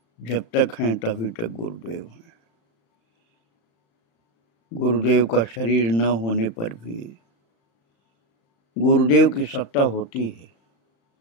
जब तक हैं तभी तक गुरुदेव हैं। गुरुदेव का शरीर न होने पर भी गुरुदेव की सत्ता होती है।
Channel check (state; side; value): late; right; 35 ms